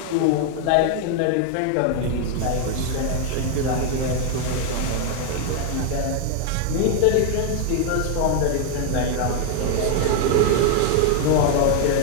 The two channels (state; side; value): different; both; correlation 0.00